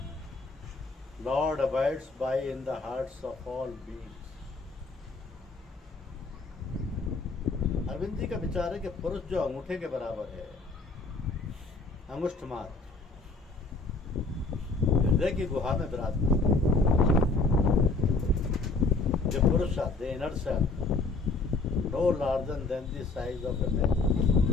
Lord abides by in the hearts of all beings. Arvind ji का विचार है कि पुरुष जो अंगूठे के बराबर है, अंगुष्ठ मात्र, हृदय की गुहा में विराजमान। The Purusha, the inner self, no larger than the size of a man.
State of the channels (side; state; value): right; quieter; 3.7 dB